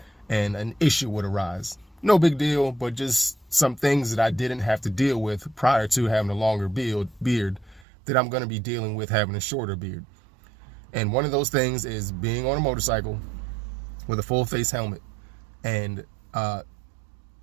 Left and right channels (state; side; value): drops out; left; at 7.9 s